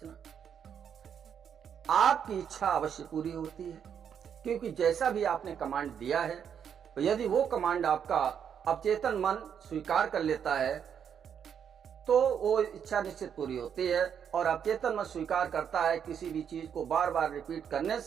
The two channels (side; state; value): left; quieter; 8.0 dB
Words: आपकी इच्छा अवश्य पूरी होती है, क्योंकि जैसा भी आपने कमांड दिया है, तो यदि वो कमांड आपका अवचेतन मन स्वीकार कर लेता है तो वो इच्छा निश्चित पूरी होती है। और अवचेतन मन स्वीकार करता है किसी भी चीज को बार बार रिपीट करने